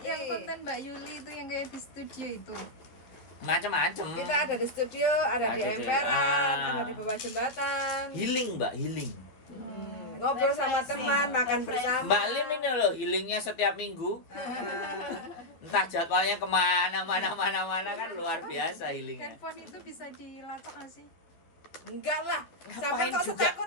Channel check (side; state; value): right; late; 12 ms